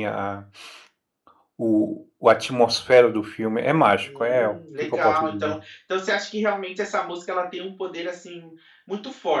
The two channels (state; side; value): identical; both; correlation 1.00